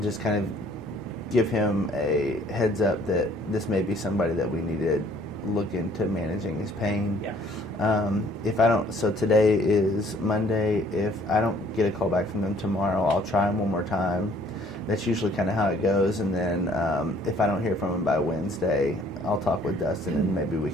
just kind of give him a heads up that this may be somebody that we need to look into managing his pain. Yeah. If I don't, so today is Monday. If I don't get a call back from them tomorrow, I'll try him one more time. That's usually kind of how it goes. And then if I don't hear from him by Wednesday, I'll talk with Dustin, and maybe we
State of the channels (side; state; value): both; normal; correlation 0.59